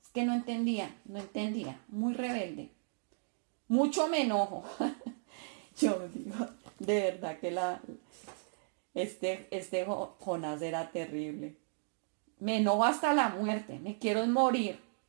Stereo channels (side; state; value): left; silent; digital silence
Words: Es que no entendía, muy rebelde. Mucho me enojo. Yo digo, de verdad que este Jonás era terrible. Me enojo hasta la muerte, me quiero morir.